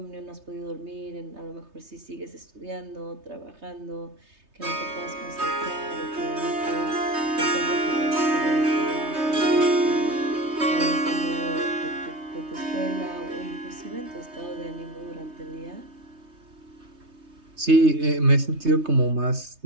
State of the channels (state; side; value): late; left; 3.2 ms